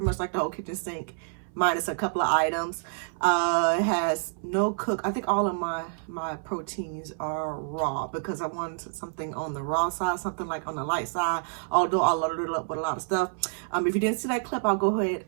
much like the whole kitchen sink, minus a couple of items. It has no cook. I think all of my proteins are raw because I wanted something on the raw side, something like on the light side. Although I loaded it up with a lot of stuff. If you didn't see that clip, I'll go ahead.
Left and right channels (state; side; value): silent; left; 59 dB below the other